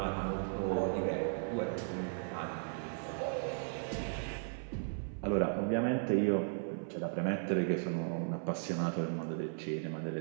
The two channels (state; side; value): silent; left; 54 dB below the other